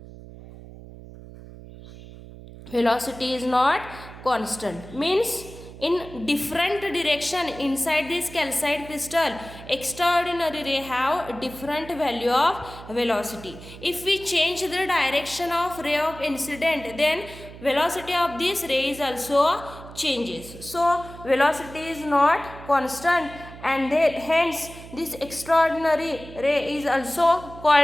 Velocity is not constant means in different direction inside this calcite crystal, extraordinary ray have different value of velocity. If we change the direction of ray of incident, then velocity of this ray is also changes. So velocity is not constant, and then hence this extraordinary ray is also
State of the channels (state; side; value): noise; right; hum, 16 dB below the sound